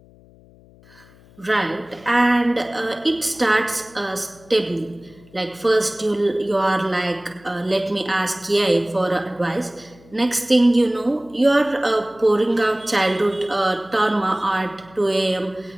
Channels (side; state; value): left; noise; hum, 26 dB below the sound